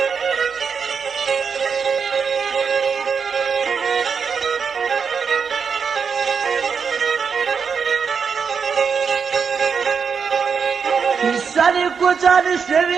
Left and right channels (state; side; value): quieter; left; 6.1 dB